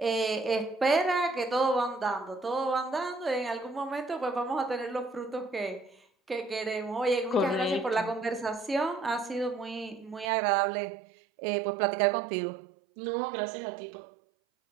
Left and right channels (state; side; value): drops out; left; at 10.2 s